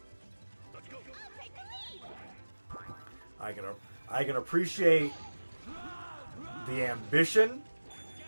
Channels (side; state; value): both; inverted; correlation -1.00